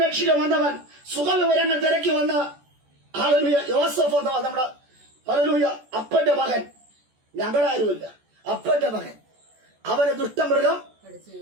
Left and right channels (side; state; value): left; late; 14 ms